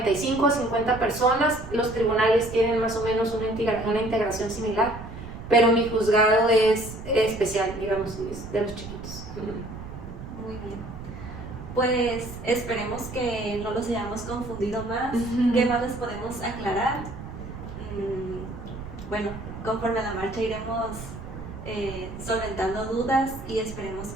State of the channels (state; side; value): noise; right; rumble, 12 dB below the sound